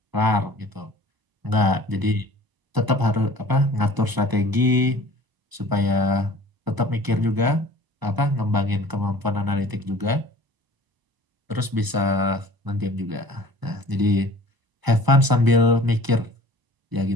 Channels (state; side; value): late; left; 1.0 ms